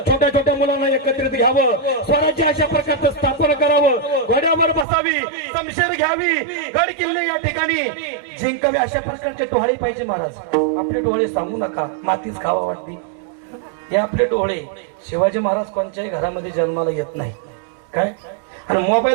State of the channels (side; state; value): left; drops out; at 4.9 s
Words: छोट्या मुलांना एकत्रित घ्यावं, स्वराज्य अशा प्रकारचं स्थापन करावं, घोड्यावर बसावी, शमशेर घ्यावी, गड किल्ले या ठिकाणी जिंकावे, अशा प्रकारचे डोहाळे पाहिजे महाराज। आपले डोळे सांगू नका, मातीच खावा वाटते, हे आपले डोळे। शिवाजी महाराज कोणत्याही घरामध्ये जन्माला येत नाही काय, आणि